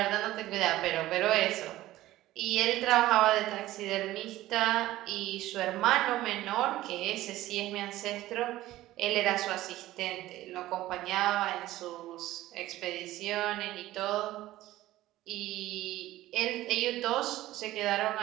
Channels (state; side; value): quieter; left; 15.8 dB